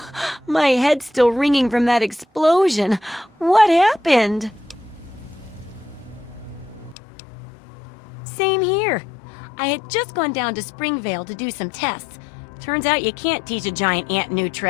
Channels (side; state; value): right; drops out; at 7.0 s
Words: my head's still ringing from that explosion. What happened? Same here. I had just gone down to Springvale to do some tests. Turns out you can't teach a giant ant new